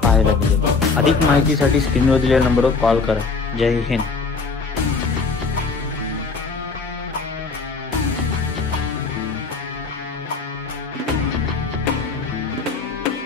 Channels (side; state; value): right; quieter; 4.5 dB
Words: पाहायला मिळेल। अधिक माहितीसाठी स्क्रीनवर दिलेल्या नंबरवर कॉल करा। जय हिंद।